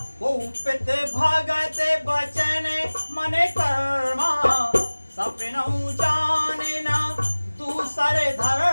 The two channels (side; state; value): both; inverted; correlation -1.00